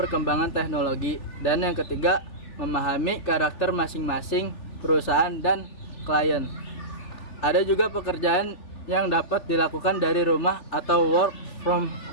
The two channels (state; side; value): late; right; 3.3 ms